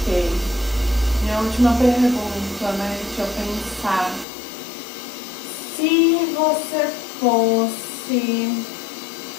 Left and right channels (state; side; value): drops out; right; at 4.2 s